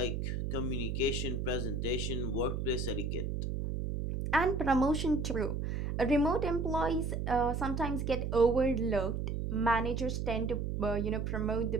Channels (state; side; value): noise; right; hum, 2 dB below the sound